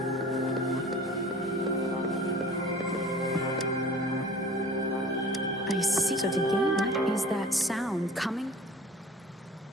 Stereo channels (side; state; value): both; normal; correlation 0.44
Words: I see. So to gain, what is that sound coming?